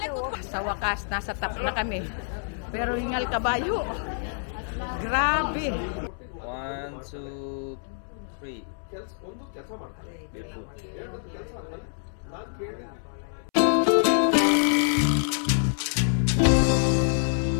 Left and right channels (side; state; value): right; silent; 60 dB below the other